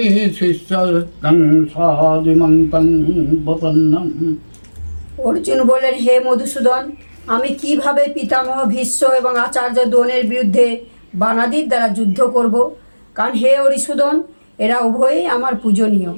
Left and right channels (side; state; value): both; inverted; correlation -1.00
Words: शिष्यस्तं सादिमन्तं प्रपन्नम्। অর্জুন বললেন, হে মধুসূদন, আমি কিভাবে পিতামহ ভীষ্ম এবং আচার্য দ্রোণের বিরুদ্ধে বানাদির দ্বারা যুদ্ধ করব? কারণ হে হরিসূদন, এরা উভয়ই আমার পূজনীয়।